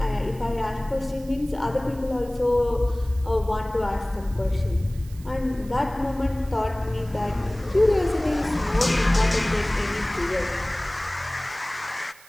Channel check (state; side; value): noise; right; hiss, 23 dB below the sound